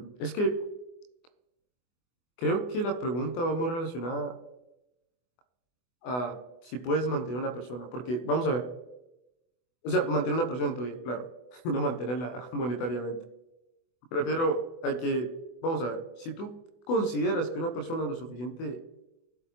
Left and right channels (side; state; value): right; late; 24 ms